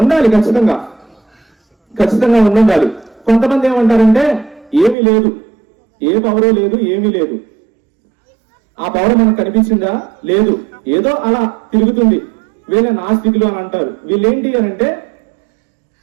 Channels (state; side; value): drops out; left; at 5.0 s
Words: ఉండాలి, ఖచ్చితంగా ఉండాలి. కొంతమంది ఏమంటారంటే ఏమీ లేదు, ఏ పవరు లేదు, ఏమీ లేదు. ఆ పవర్ మనకు కనిపించిందా? లేదు, ఏదో అలా తిరుగుతుంది. వీళ్ళ నాస్తికులు అని అంటారు. వీళ్ళేంటి అని అంటే